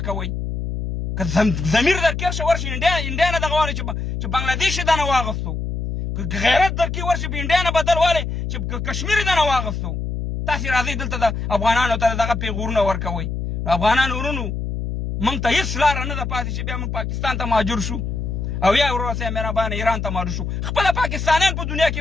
که ضمیر در کې ورشي انډیا نه دغه والی چې بنګلادیش یې دنه واغستو، که غیرت در کې ورشي په انډیا نه بدل والی چې کشمیر یې دنه واغستو. تاسې راځئ دلته د افغانانو ته دغه پیغورونه ورکوئ. افغانان ورونو، موږ ته هېڅ لاره نه ده پاتې چې بیا موږ پاکستان ته مهاجر شو او یا ورور سره مهربانه ایران ته مهاجر شو. خپله پاکستانیان په دنیا کې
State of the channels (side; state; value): left; noise; hum, 3 dB below the sound